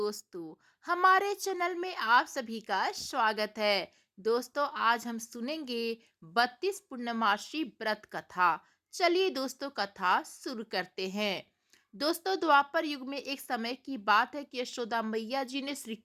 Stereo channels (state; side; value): identical; both; correlation 1.00